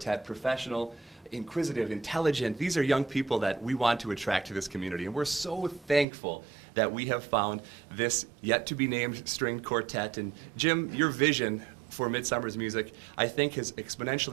professional, inquisitive, intelligent. These are young people that we want to attract to this community, and we're so thankful that we have found this yet-to-be-named stringed quartet. And Jim, your vision for Midsummer's music, I think, has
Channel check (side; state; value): left; drops out; at 6.1 s